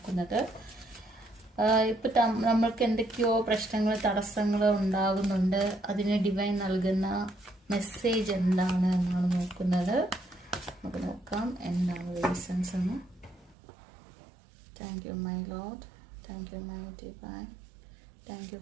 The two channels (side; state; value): left; drops out; at 13.6 s